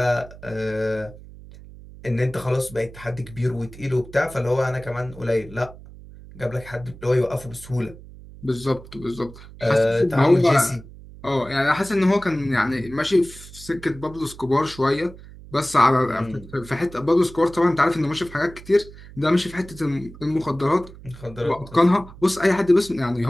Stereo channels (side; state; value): right; noise; hum, 18 dB below the sound